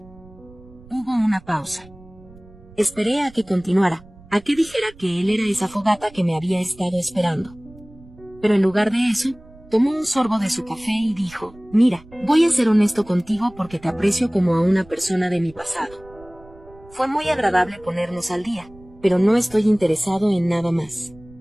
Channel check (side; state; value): right; noise; rumble, 23 dB below the sound